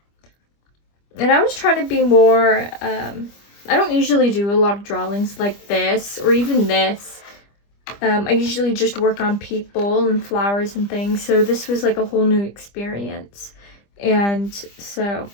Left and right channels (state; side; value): late; right; 25 ms